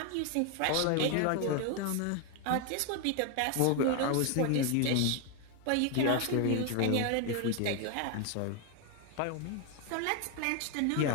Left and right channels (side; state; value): both; different; correlation 0.01